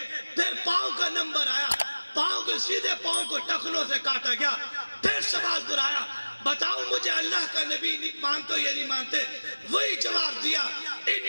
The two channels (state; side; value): inverted; both; correlation -1.00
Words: پھر پاؤں کا نمبر آیا, پاؤں کے سیدھے پاؤں کو ٹخنوں سے کاٹا گیا. پھر سوال دہرایا, بتاؤ مجھے اللہ کا نبی مانتے یا نہیں مانتے. وہی جواب دیا,